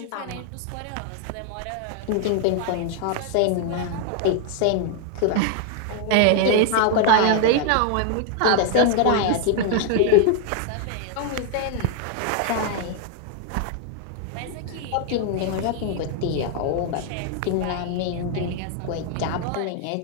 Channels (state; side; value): different; both; correlation 0.00